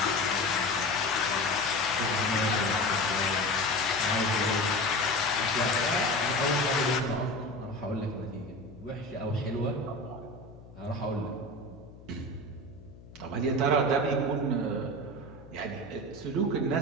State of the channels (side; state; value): left; noise; hum, 19 dB below the sound